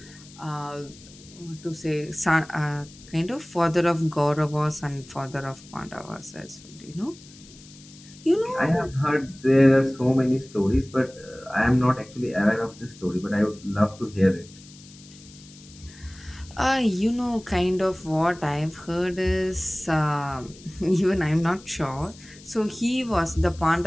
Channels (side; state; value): left; noise; hiss, 21 dB below the sound